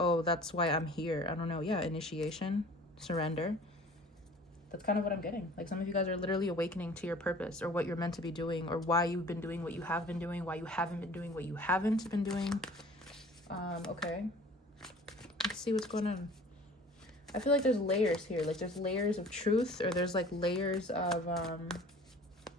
that's why I'm here. I don't know. Yeah, initiation, surrender. That's kind of what I'm getting. Like some of you guys are literally awakening to your purpose or what you're meant to be doing, or why you've been doing what you have been doing, why you haven't been doing what you haven't been doing. Okay. Let's see what's going on. I feel like there's layers here. Like there's layers of truth, or there's like layers of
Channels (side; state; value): both; normal; correlation 0.47